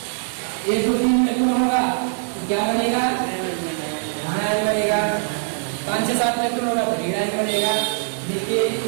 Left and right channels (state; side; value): silent; left; 64 dB below the other